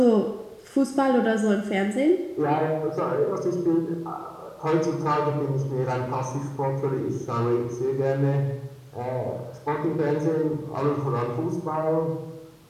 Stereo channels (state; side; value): identical; both; correlation 1.00